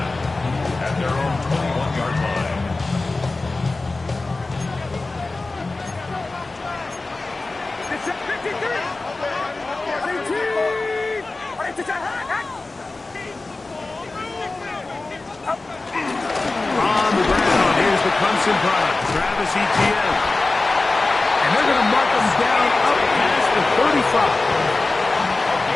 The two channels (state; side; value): quieter; right; 3.4 dB